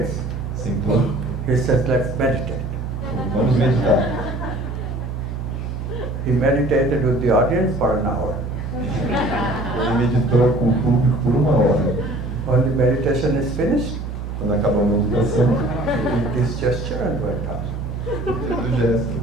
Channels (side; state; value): right; noise; hum, 6 dB below the sound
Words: sentou, he says, let's meditate. vamos meditar. He meditated with the audience for an hour. Ele meditou com o público por 1 hora. When the meditation is finished, Quando acabou a meditação, he did this gesture and went out. fez o gesto